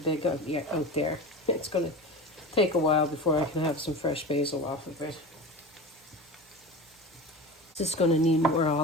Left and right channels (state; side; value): normal; both; correlation 0.30